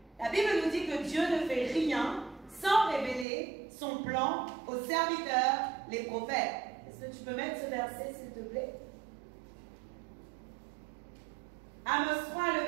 la Bible nous dit que Dieu ne fait rien sans révéler son plan aux serviteurs, les prophètes. Est-ce que tu peux mettre ce verset, s'il te plaît? Amos 3, le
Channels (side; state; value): left; drops out; at 3.2 s